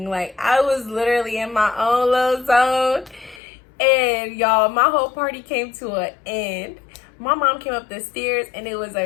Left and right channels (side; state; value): right; drops out; at 3.4 s